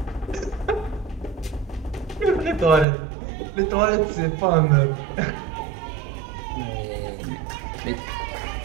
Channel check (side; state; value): left; drops out; at 2.9 s